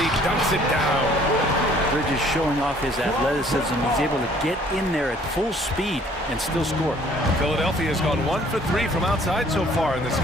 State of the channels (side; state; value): both; normal; correlation 0.58